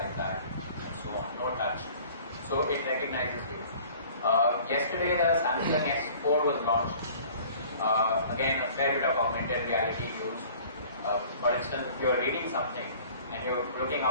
that and so on. No touch. So it recognizes you. Yesterday the Samsung S4 was launched. Again, a fair bit of augmented reality used. For instance, if you're reading something and you're looking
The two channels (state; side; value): inverted; both; correlation -0.49